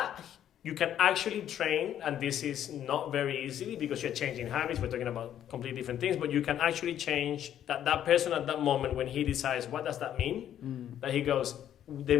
you can actually train, and this is not very easily because you're changing habits. We're talking about completely different things, but you can actually change that person at that moment when he decides, what does that mean? That he goes, the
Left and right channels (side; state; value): right; quieter; 10.6 dB